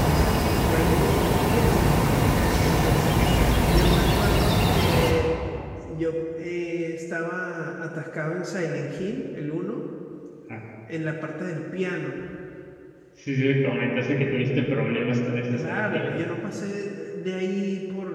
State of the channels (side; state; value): both; identical; correlation 1.00